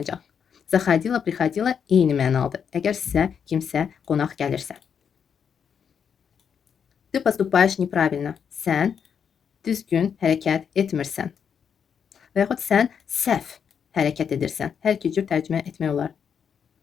Заходила, приходила eyni mənalıdır. Əgər sizə kimsə qonaq gəlirsə. Ты поступаешь неправильно. Sən düzgün hərəkət etmirsən. Və yaxud sən səhv hərəkət edirsən. Hər iki cür tərcümə etmək olar.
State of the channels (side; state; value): right; quieter; 7.3 dB